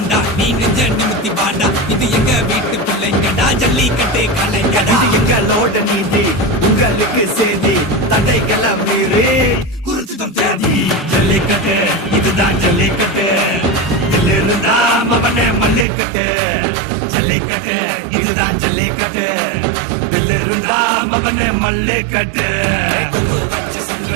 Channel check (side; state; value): left; drops out; at 15.9 s